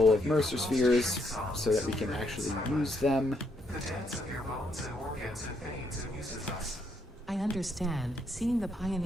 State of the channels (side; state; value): both; normal; correlation 0.74